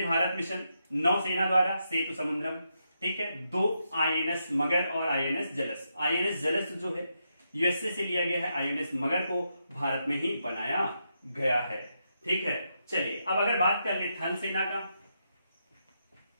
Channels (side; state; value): both; inverted; correlation -0.83